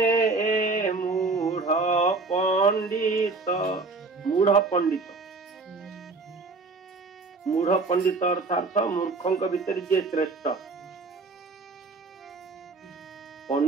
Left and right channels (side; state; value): left; quieter; 3.8 dB